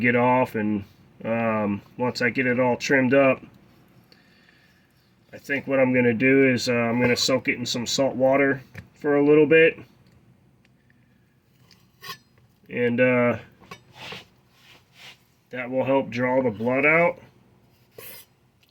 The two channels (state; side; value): identical; both; correlation 1.00